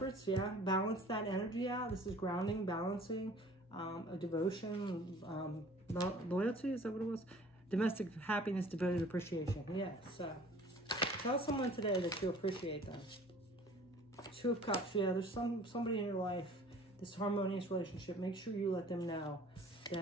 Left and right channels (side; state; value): both; normal; correlation 0.50